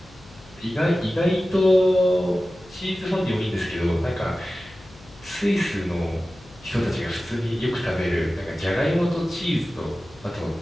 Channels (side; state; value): left; noise; hum, 23 dB below the sound